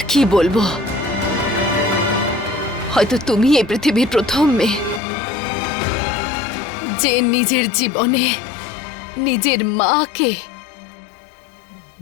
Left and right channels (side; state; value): right; drops out; at 5.0 s